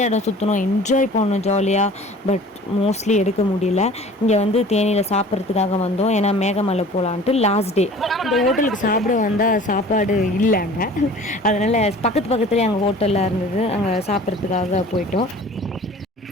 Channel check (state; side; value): normal; both; correlation 0.46